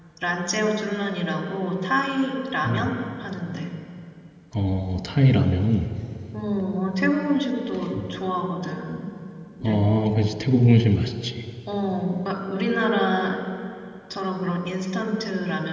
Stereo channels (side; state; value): both; identical; correlation 1.00